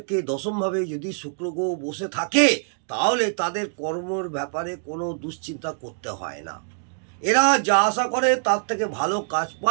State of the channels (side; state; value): left; silent; digital silence